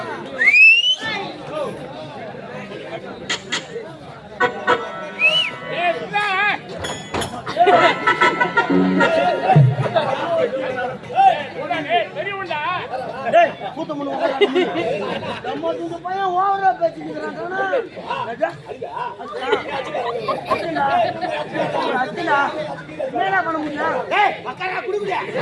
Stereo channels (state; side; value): identical; both; correlation 1.00